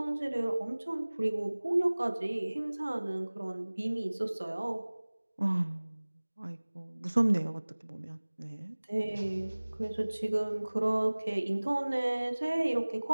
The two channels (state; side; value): inverted; both; correlation -1.00